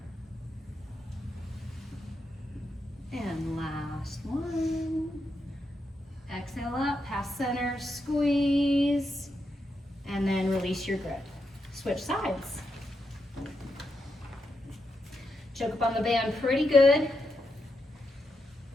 And last one. Exhale up, past center, squeeze, and then release your grip. Switch sides. Choke up on the band pretty good.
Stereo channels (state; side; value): normal; both; correlation 0.84